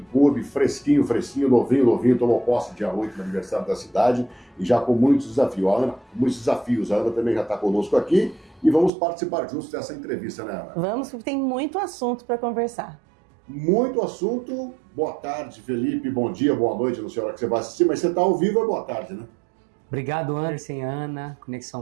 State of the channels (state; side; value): drops out; left; at 8.9 s